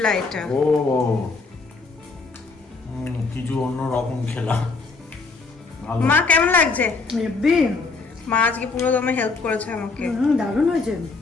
এটা। ও কিছু অন্য রকম খেলাম। ভালো। মা কেমন লাগছে? হেব্বি। মা আজকে পুরো দমে হেল্প করেছে আমাকে। দারুণ হয়েছে,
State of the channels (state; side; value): quieter; right; 4.1 dB